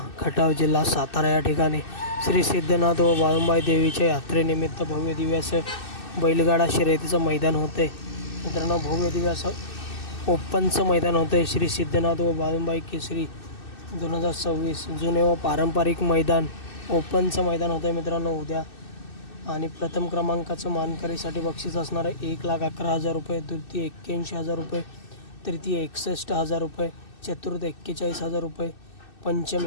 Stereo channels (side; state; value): right; late; 2.6 ms